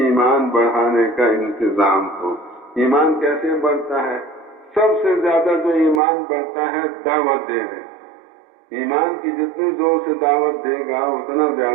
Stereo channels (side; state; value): left; drops out; at 6.0 s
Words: ایمان بڑھانے کا انتظام ہو۔ ایمان کیسے بڑھتا ہے؟ سب سے زیادہ جو ایمان بڑھتا ہے دعوت دینے۔ ایمان کی جتنے زور سے دعوت دے گا اتنا